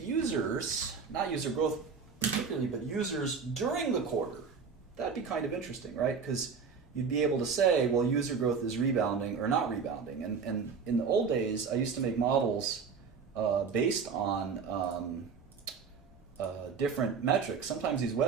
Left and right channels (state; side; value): quieter; left; 5.7 dB